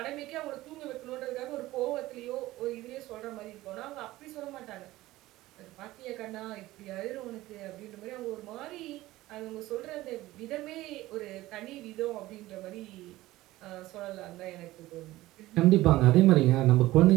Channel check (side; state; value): left; quieter; 17.2 dB